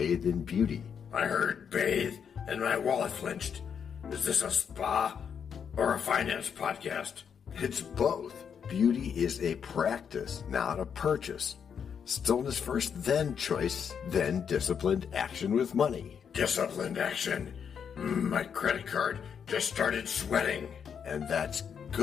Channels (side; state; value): right; quieter; 7.3 dB